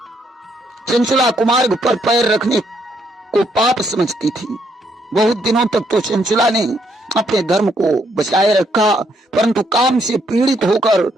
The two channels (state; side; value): normal; both; correlation 0.73